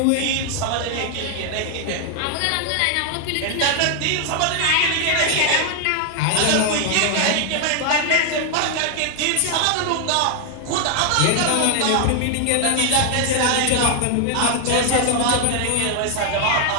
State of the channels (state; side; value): different; both; correlation 0.00